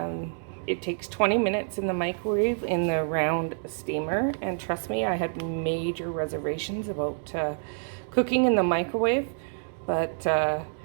it takes 20 minutes in the microwave in the round steamer. And trust me, I had major reservations about cooking in the microwave, but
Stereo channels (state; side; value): silent; left; 60 dB below the other